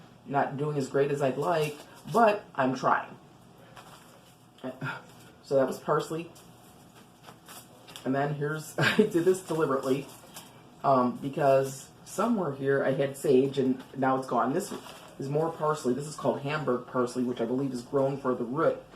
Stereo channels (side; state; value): both; identical; correlation 1.00